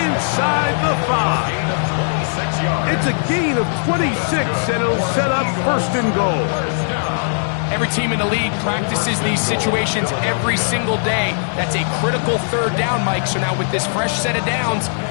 inside the 5. It's a gain of 26, and it'll set up first and goal. every team in the league practices these situations every single day. That's a critical third down, Mike. So now with this fresh set of downs,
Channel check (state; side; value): silent; right; 63 dB below the other